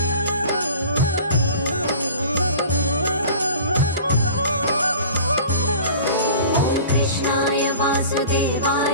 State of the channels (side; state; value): both; inverted; correlation -0.43